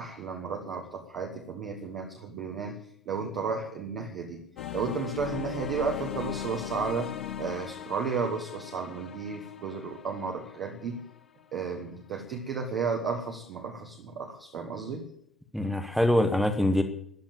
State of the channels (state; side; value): normal; both; correlation 0.56